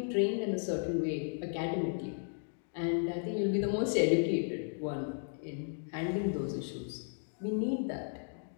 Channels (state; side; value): silent; right; digital silence